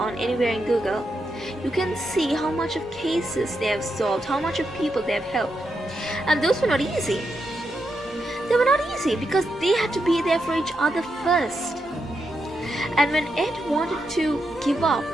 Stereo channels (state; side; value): normal; both; correlation 0.84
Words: anywhere in Google, you can see how much of cases they have solved, how much of people they have helped. And those were not easy. They were not easy because they had to be there for each other first. And when Ed wanted to give up,